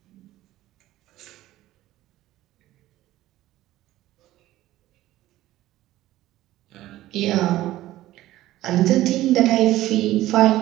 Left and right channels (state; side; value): quieter; left; 15.3 dB